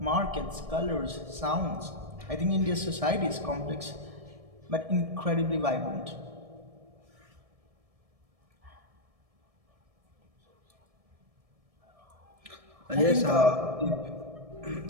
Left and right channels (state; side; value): late; left; 1.7 ms